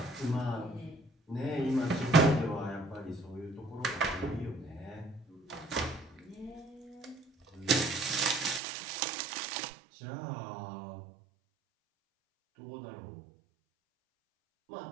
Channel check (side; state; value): left; drops out; at 8.6 s